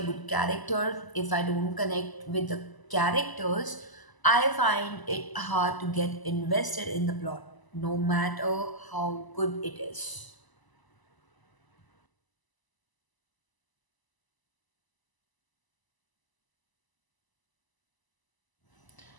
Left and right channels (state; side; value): late; right; 1.0 ms